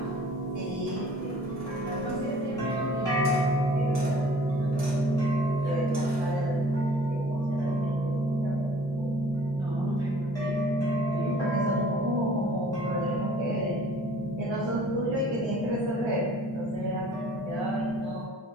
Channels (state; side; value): normal; both; correlation 0.51